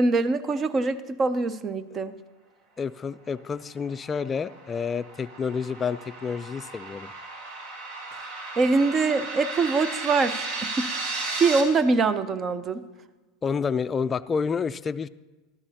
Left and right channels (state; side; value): normal; both; correlation 0.72